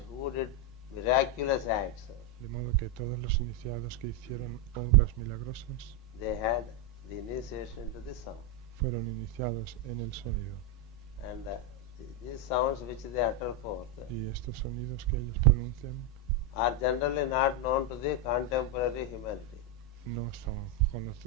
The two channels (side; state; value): both; normal; correlation 0.04